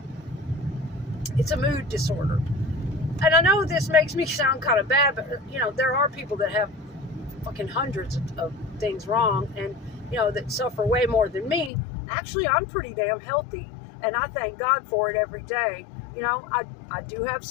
It's a mood disorder. And I know this makes me sound kind of bad, but, there are people that have fucking hundreds of things wrong and, that suffer way more than me. Actually, I'm pretty damn healthy, and I thank God for it every day. I do have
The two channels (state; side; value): drops out; right; at 11.7 s